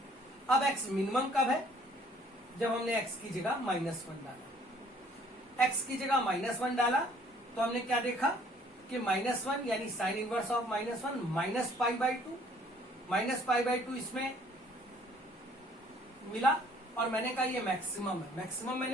अब x मिनिमम कब है, जब हमने x की जगह -1 डाला। x की जगह -1 डाला तो हमने क्या देखा कि -1 यानी sign inverse of -1 minus pi by 2, minus pi by 2 इसमें मिला और मैंने कहा ये मैक्सिमम है। मैक्सिमम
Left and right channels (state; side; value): normal; both; correlation 0.59